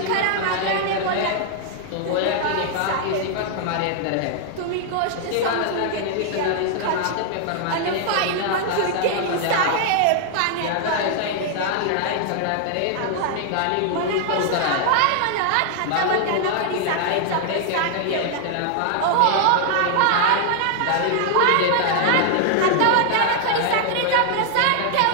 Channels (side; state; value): both; different; correlation 0.00